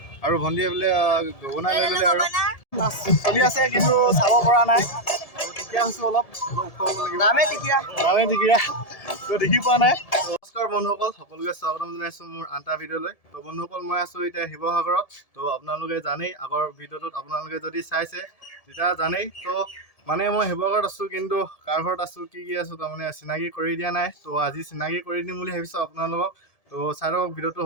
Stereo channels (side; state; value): right; late; 1.7 ms